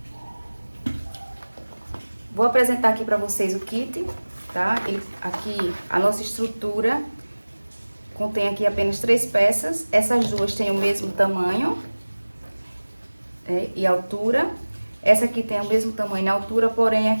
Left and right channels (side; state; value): both; inverted; correlation -1.00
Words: Vou apresentar aqui para vocês o kit, tá? Aqui a nossa estrutura contém aqui apenas 3 peças. Essas duas têm o mesmo tamanho e altura. Essa aqui tem o mesmo tamanho e altura, porém